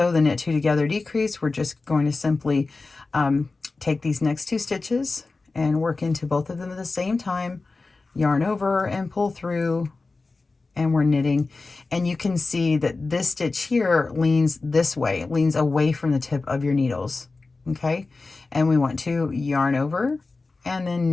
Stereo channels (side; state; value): right; quieter; 3.7 dB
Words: the knit 2 together decrease, we're just going to simply take these next 2 stitches and work into both of them at the same time, yarn over and pull through, and we're knitting. And you can see that this stitch here leans this way, it leans away from the tip of your needles, okay? And we want to yarn over and then